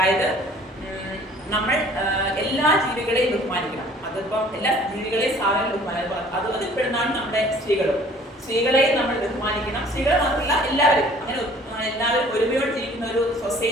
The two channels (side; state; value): both; normal; correlation 0.53